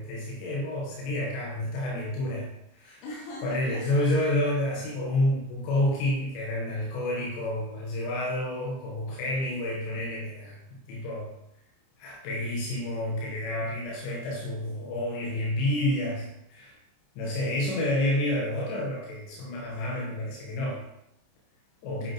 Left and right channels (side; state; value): right; late; 30 ms